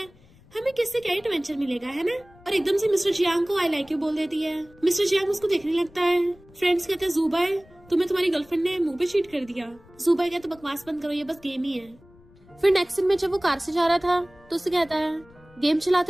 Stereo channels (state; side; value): noise; left; rumble, 26 dB below the sound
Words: हमें किससे क्या एडवेंचर मिलेगा, है ना? और एकदम से मिस्टर चियांग को आई लाइक यू बोल देती है। मिस्टर चियांग उसको देखने लगता है। फ्रेंड्स कहते हैं जुबाई तुम्हें तुम्हारी गर्लफ्रेंड ने मुंह पे चीट कर दिया। जुबाई कहता बकवास बंद करो, ये बस गेम ही है। फिर नेक्स्ट सीन में जब वो कार से जा रहा था तो उससे कहता है गेम